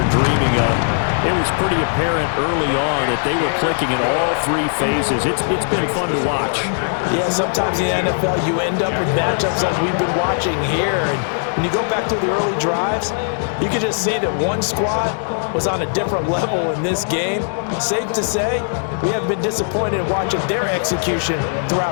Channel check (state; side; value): silent; right; digital silence